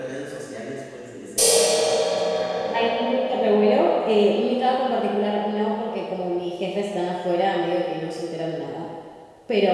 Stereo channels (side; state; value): both; identical; correlation 1.00